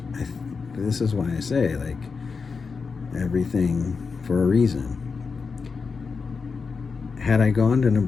why I say, like, everything for a reason. Had I gone to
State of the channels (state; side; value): quieter; right; 5.0 dB